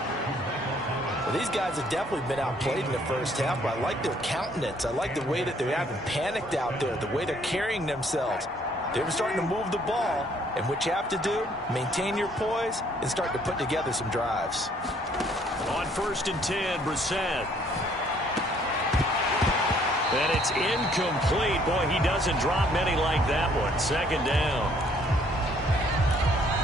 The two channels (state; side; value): normal; both; correlation 0.63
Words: Well, these guys have definitely been outplayed in the first half, but I like their countenance. I like the way that they haven't panicked out there, the way they're carrying themselves. They're starting to move the ball, and what you have to do, maintain your poise and start to put together some drives. On 1st and 10, Brissett. And it's incomplete. Boy, he doesn't drop many like that one. Second down.